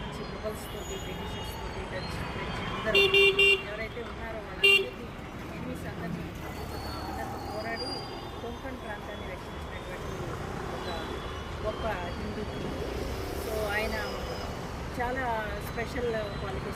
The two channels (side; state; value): both; identical; correlation 1.00